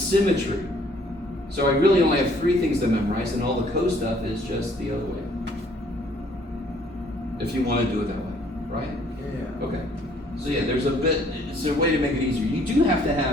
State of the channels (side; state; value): both; normal; correlation 0.61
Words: So I really only have 3 things to memorize, and all the co stuff is just the other way. If you want to do it that way, right? Yeah. Okay. So yeah, there's a bit, it's a way to make it easier. You do have to